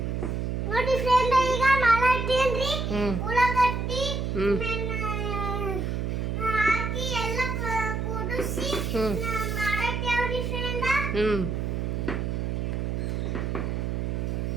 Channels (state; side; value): noise; right; hum, 1 dB below the sound